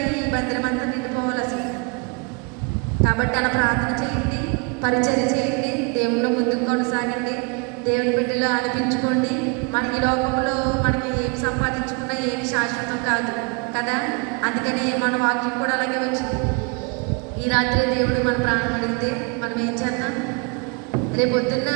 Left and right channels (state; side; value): quieter; left; 32.0 dB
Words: ఈ మందిరం అంతా నిండిపోవాలి అసలు. కాబట్టి అలా ప్రార్థన చేయండి, పరిచర్య చేయండి, దేవుళ్ళు ముందుకు కొనసాగండి, దేవుని బిడ్డలు అనిపించుకోండి. మనకి లోకంలో మనకి ఏమి సంపాదించుకున్నా ఏమి శాశ్వతం కాదు కదా. అందుకని మన వాక్యం కూడా అలాగే వచ్చింది. ఈ రాత్రి దేవుడు మన ప్రార్థన అడిగితే మనం ఏం చేద్దాం? రేపు పొద్దున్న